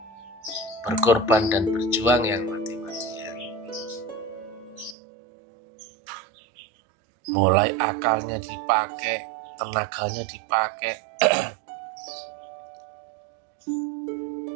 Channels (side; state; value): left; drops out; at 5.0 s